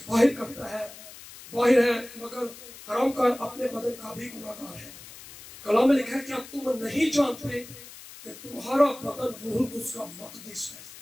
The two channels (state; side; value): noise; left; hiss, 17 dB below the sound